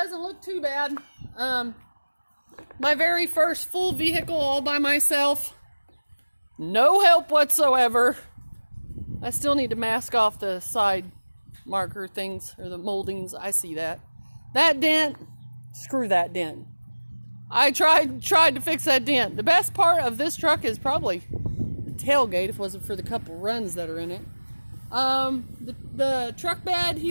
look too bad. My very first full vehicle all by myself. No help whatsoever. I still need to mask off the side marker things or the moldings. I see that. That dent, screw that dent. I tried to fix that dent. The best part of this truck is probably the tailgate, if it wasn't for the couple runs that are in it. The truck bed,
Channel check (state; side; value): inverted; both; correlation -1.00